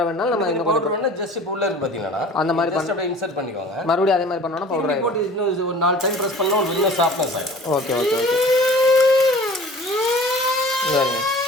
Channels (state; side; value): normal; both; correlation 0.44